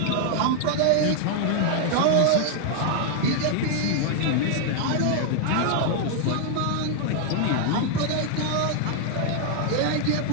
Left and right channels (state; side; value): different; both; correlation 0.00